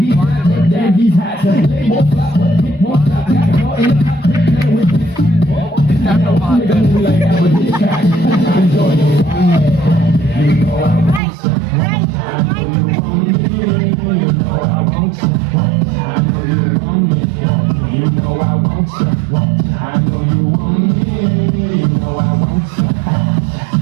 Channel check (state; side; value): drops out; left; at 11.2 s